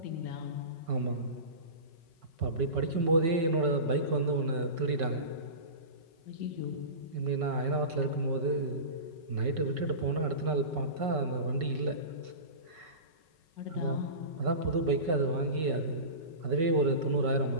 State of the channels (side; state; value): left; late; 5.3 ms